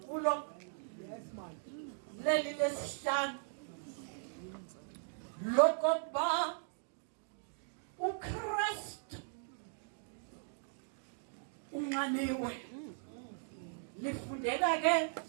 leli lesihlanu lokokuba uKristu unxaniwe. Lifundeka ke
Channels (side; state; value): left; silent; digital silence